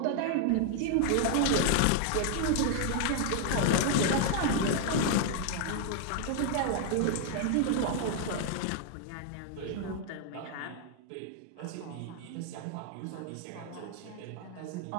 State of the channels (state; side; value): different; both; correlation 0.00